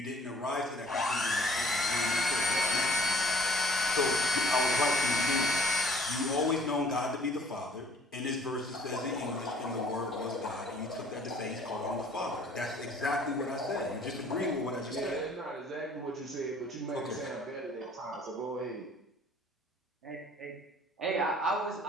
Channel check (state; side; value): normal; both; correlation 0.56